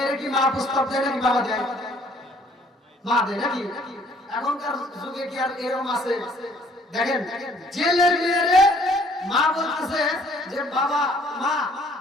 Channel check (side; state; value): both; normal; correlation 0.60